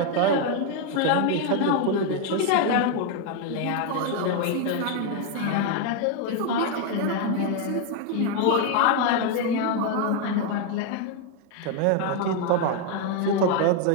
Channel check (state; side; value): different; both; correlation 0.01